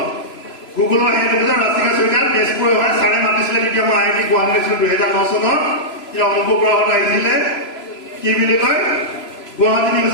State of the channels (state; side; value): late; right; 3.0 ms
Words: গুগলৰ হেড অফিচত ৰাষ্ট্ৰীয় চৰকাৰ তেজপুৰ হয়, ছাৰে মাতিছিলে তেতিয়া মই IIT গুৱাহাটী আছিলোঁ 2009 চনত। এতিয়া অংক গ্ৰহত আহিছিলে কি বুলি কয় গুৱাহাটী